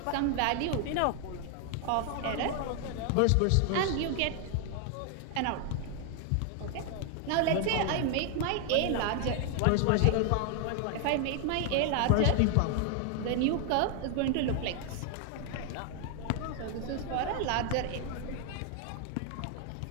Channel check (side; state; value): both; different; correlation 0.00